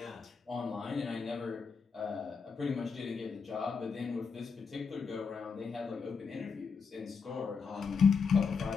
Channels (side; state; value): right; quieter; 5.4 dB